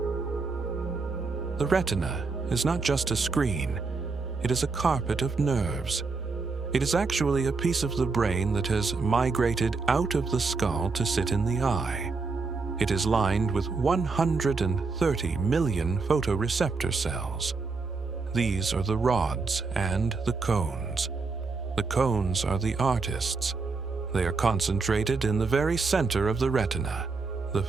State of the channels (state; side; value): quieter; left; 4.3 dB